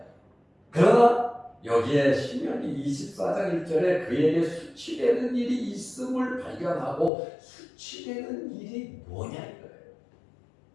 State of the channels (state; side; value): drops out; right; at 7.1 s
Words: 그러나 여기에 신명기 24장 1절에 그에게 수치되는 일이 있음을 발견하고 수치되는 일이 뭐냐 이거예요.